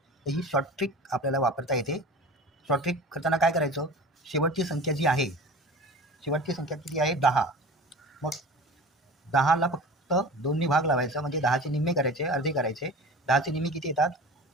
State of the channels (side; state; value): both; normal; correlation 0.37